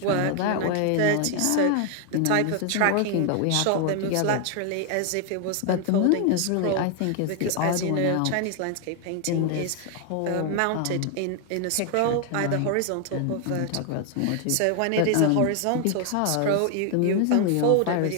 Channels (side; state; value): both; different; correlation 0.00